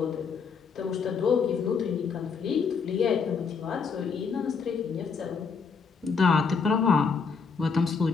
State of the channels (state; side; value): quieter; right; 5.5 dB